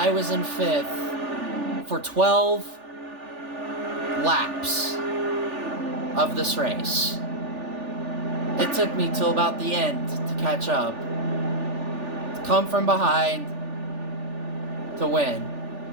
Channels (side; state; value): left; late; 3.4 ms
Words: was in 5th for 12 laps of this race. It took me till about the end to catch up, to come from behind, to win.